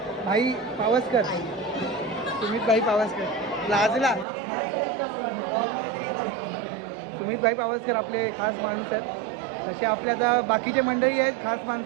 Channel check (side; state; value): left; drops out; at 4.2 s